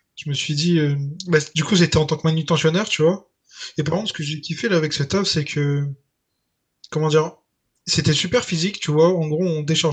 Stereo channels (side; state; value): both; identical; correlation 1.00